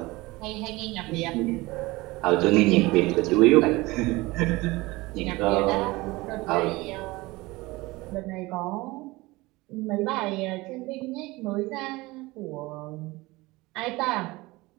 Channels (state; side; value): quieter; left; 21.4 dB